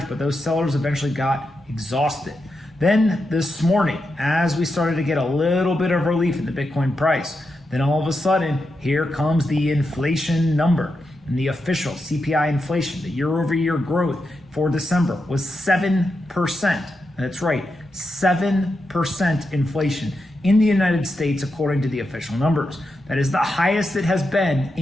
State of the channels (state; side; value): normal; both; correlation 0.87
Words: but those sellers eventually got exhausted. Then this morning, as we started to get a little bit of relief in the Bitcoin price, then all of a sudden, here comes the inflation number. And the official CPI inflation, the year-over-year growth for December was 7%. That's right, 7% inflation in the United States, according to the official numbers. That is the highest it has been